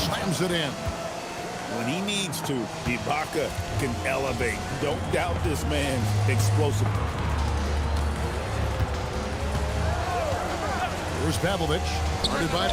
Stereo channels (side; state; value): both; identical; correlation 1.00